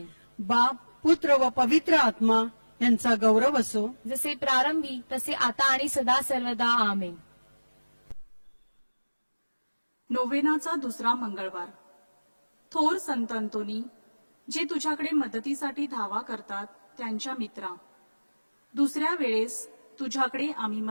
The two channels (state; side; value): inverted; both; correlation -1.00